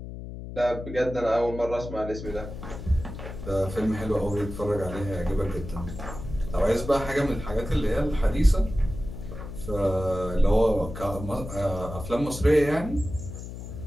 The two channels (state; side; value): noise; left; hum, 10 dB below the sound